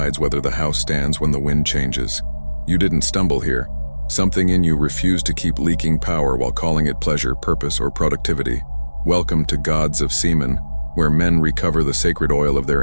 whether the house stands when the wind changes. You didn't stumble here. Something in you refused to keep leaking power while calling it pleasure, purpose, or productivity. Welcome to Gods of Semen, where men recover the sacred oil of their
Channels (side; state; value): both; inverted; correlation -1.00